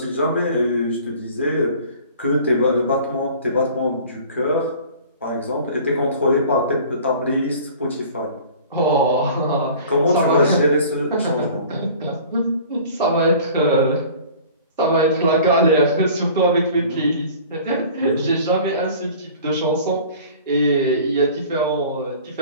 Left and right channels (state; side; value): inverted; both; correlation -0.45